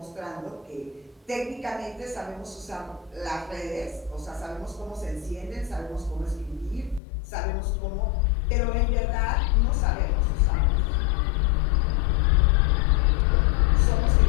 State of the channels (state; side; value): drops out; right; at 7.0 s